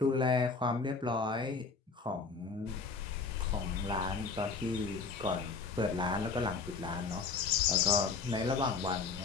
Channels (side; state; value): right; quieter; 4.6 dB